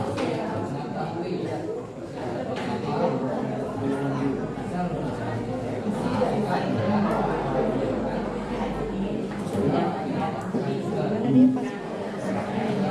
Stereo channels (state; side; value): identical; both; correlation 1.00